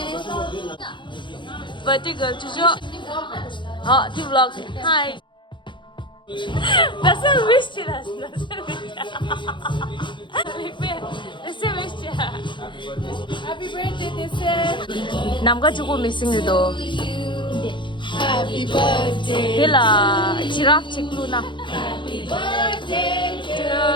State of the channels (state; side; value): late; right; 0.23 ms